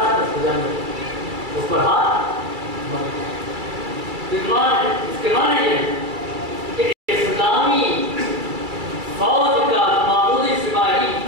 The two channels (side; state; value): left; late; 2.3 ms